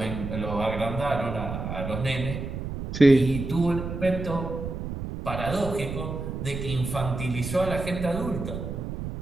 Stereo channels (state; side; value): noise; right; rumble, 6 dB below the sound